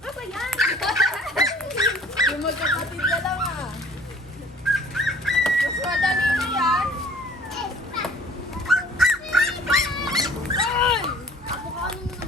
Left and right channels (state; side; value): normal; both; correlation 0.50